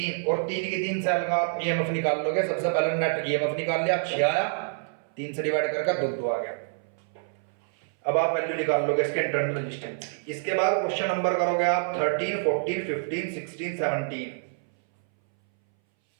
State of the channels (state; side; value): silent; left; 60 dB below the other